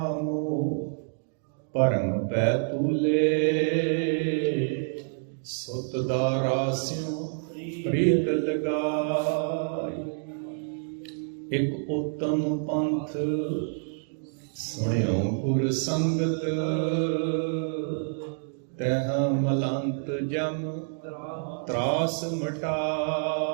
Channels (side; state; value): left; silent; digital silence